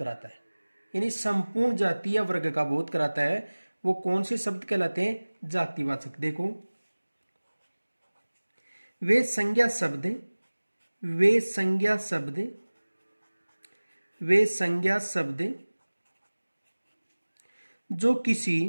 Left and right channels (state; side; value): inverted; both; correlation -1.00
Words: है, यानी संपूर्ण जातीय वर्ग का बोध कराता है, वो कौन से शब्द कहलाते हैं? जातिवाचक। देखो वे संज्ञा शब्द जो किसी